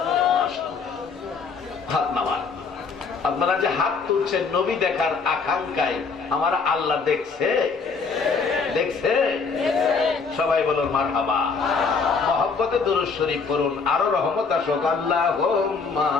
হাত নামান। আপনারা যে হাত তুলছেন নবী দেখার আকাঙ্ক্ষায়, আমার আল্লাহ দেখছে? দেখছে? সবাই বলুন মারহাবা। মহব্বতে দুরূদ শরীফ পড়ুন, আরো রহমত আসুক। আল্লাহুম্মা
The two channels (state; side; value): quieter; right; 4.9 dB